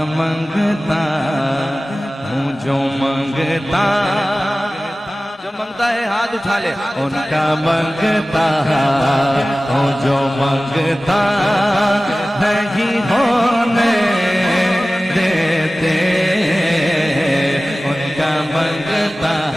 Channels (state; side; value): normal; both; correlation 0.97